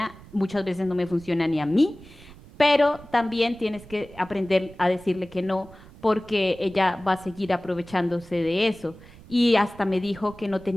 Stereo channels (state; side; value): noise; right; rumble, 20 dB below the sound